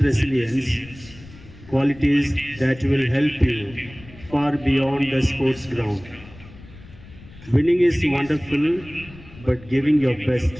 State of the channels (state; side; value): noise; left; rumble, 20 dB below the sound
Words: resilience, qualities that will help you far beyond the sports ground. Winning is wonderful, but giving your